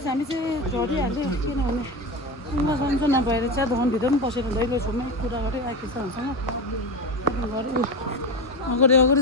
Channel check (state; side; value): normal; both; correlation 0.21